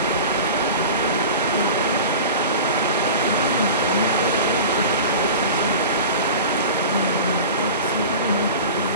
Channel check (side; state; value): both; inverted; correlation -0.35